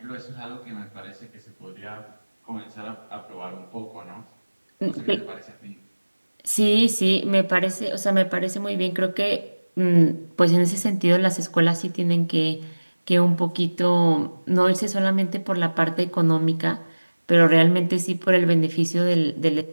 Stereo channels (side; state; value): both; inverted; correlation -1.00